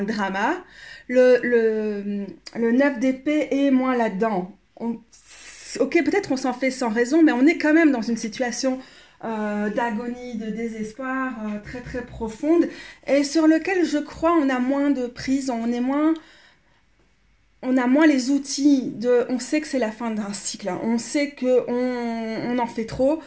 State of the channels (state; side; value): identical; both; correlation 1.00